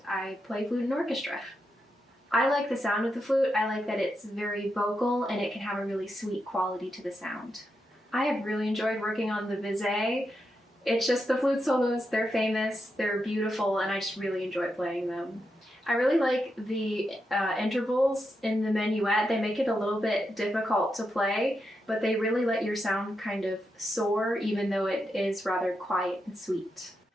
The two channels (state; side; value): normal; both; correlation 0.85